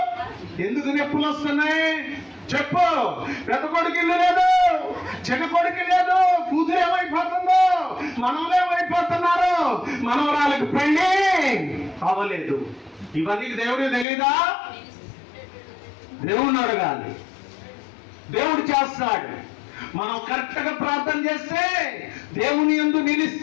ఎందుకు నొప్పులు వస్తున్నాయి చెప్పు. పెద్ద కొడుకు ఇల్లు లేదు, చిన్న కొడుకు లేదు, కూతురు ఏమైపోతుందో, మనవలు ఏమైపోతున్నారు, మనవరాలకు పెళ్ళి అవ్వలేదు. ఇవన్నీ దేవుడికి తెలీదా? దేవుణ్ణి అడగాలి, దేవుడు చేస్తాడు. మనం కరెక్ట్ గా ప్రార్థన చేస్తే, దేవుని యందు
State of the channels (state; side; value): drops out; right; at 14.1 s